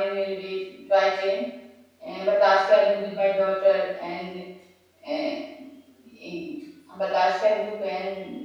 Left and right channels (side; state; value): both; identical; correlation 1.00